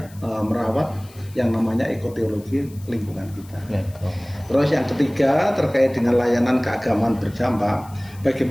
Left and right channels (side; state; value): left; noise; hiss, 24 dB below the sound